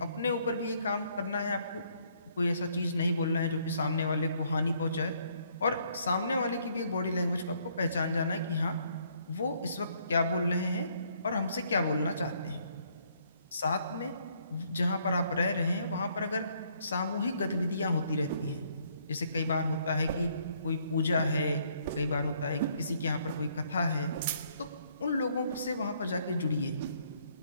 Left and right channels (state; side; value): inverted; both; correlation -0.67